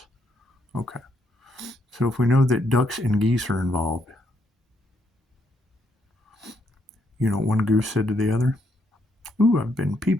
Okay. So if we know that ducks and geese are involved, you know what one goose said to the other? Ooh, I've been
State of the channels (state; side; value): normal; both; correlation 0.75